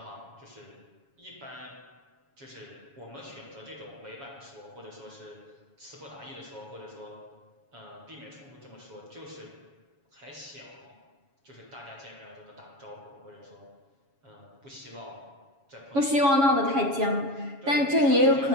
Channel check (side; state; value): left; late; 7.2 ms